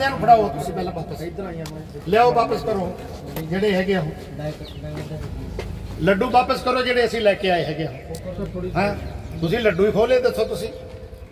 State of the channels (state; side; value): identical; both; correlation 1.00